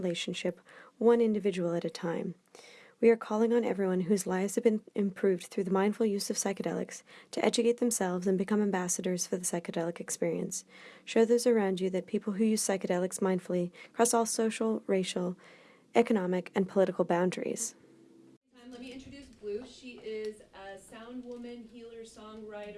one individual at a time. We are calling on everyone whose lives have been improved through the mindful use of psychedelics to educate themselves and become ambassadors for the psychedelic experience. Show those around you that people who use psychedelics mindfully cross all social, racial, economic, and political boundaries. Let me introduce Blue. She is a sound woman, healer,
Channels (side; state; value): both; identical; correlation 1.00